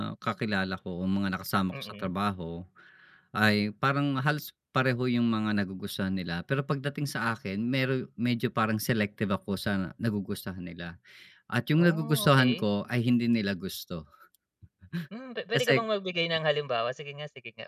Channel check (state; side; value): identical; both; correlation 1.00